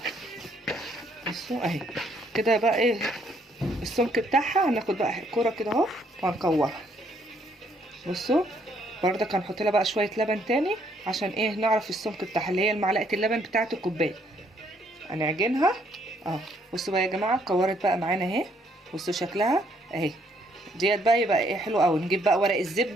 بصوا اهي كده بقى ايه السمك بتاعها. هناخد بقى كوره كده اهو وهنكورها. بصوا بردك هنحط لها بقى شويه لبن تاني عشان ايه نعرف السمك بتاعها، اللي هي معلقه اللبن بتاعه الكوبايه. هنعجنها بصوا بقى يا جماعه، كورت بقى معانا اهي. بصوا شكلها اهي ديت بقى. يبقى ايه حلو قوي. نجيب بقى ورق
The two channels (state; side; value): normal; both; correlation 0.69